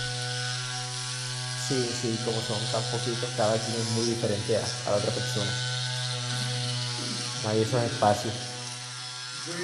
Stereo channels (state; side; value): identical; both; correlation 1.00